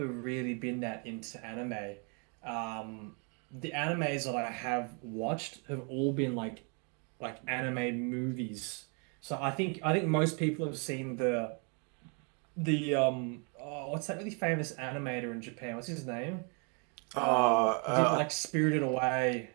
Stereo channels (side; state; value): left; quieter; 36.6 dB